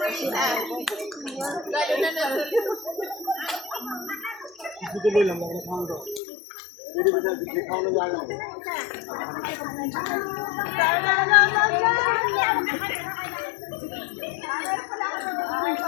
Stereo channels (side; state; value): right; drops out; at 6.2 s